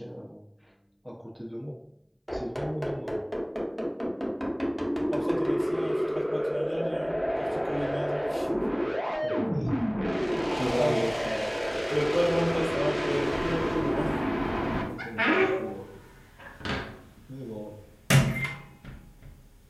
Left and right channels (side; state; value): both; identical; correlation 1.00